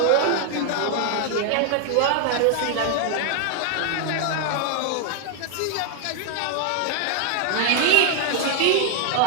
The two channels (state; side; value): different; both; correlation 0.00